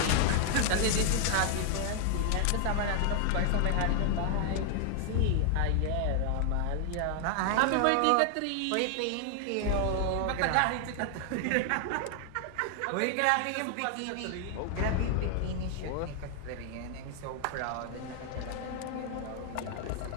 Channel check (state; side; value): different; both; correlation 0.00